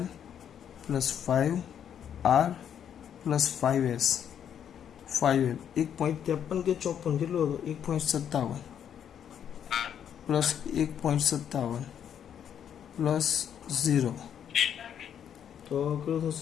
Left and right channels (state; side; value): quieter; right; 8.9 dB